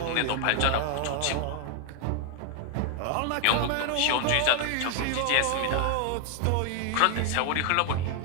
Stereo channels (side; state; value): both; different; correlation 0.00